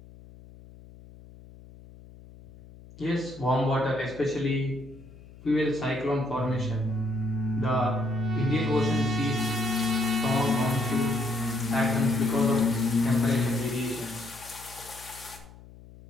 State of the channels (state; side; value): noise; left; hum, 20 dB below the sound